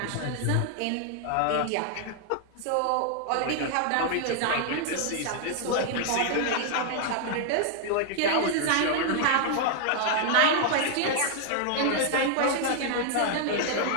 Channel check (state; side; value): different; both; correlation 0.00